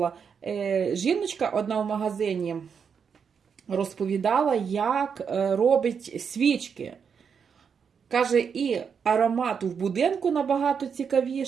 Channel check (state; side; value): quieter; left; 6.6 dB